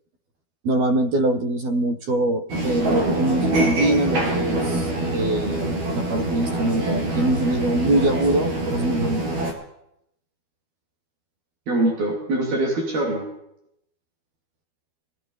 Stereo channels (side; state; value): left; late; 12 ms